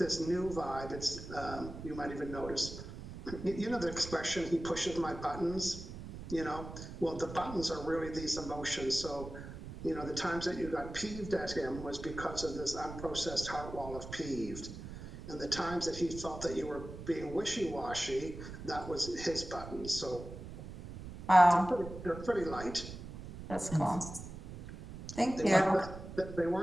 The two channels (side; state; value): right; noise; rumble, 11 dB below the sound